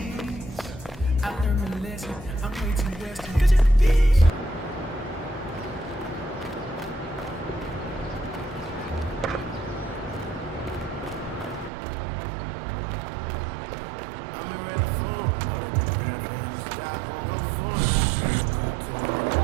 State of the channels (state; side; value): drops out; left; at 11.7 s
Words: I learned a lesson. I'm way too western. Could you be?